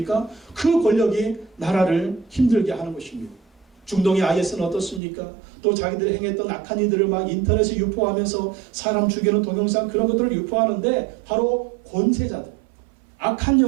그 권력이 나라를 힘들게 하는 것입니다. 중동의 IS는 어떻습니까? 또 자기들이 행했던 악한 이들을 막 인터넷에 유포하면서 사람 죽이는 동영상 그런 것들을 유포하는데 바로 권세자들, 악한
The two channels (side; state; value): left; drops out; at 5.0 s